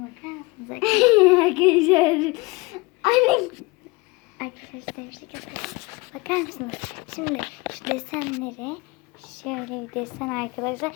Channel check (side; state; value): right; quieter; 24.4 dB